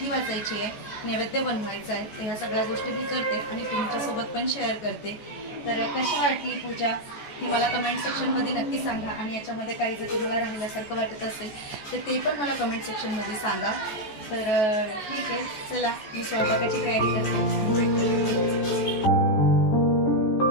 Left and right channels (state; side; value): late; right; 14 ms